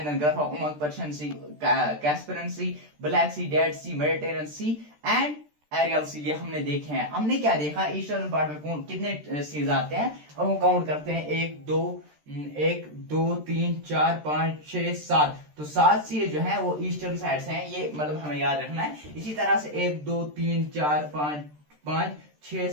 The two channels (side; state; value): left; late; 13 ms